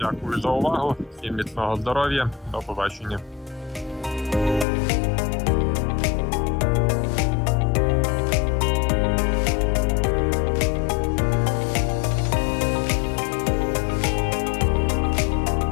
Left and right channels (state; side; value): drops out; right; at 4.7 s